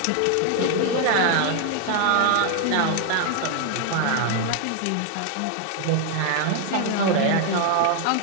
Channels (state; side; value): different; both; correlation 0.00